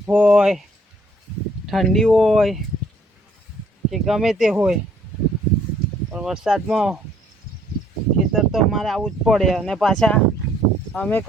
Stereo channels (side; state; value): both; normal; correlation 0.63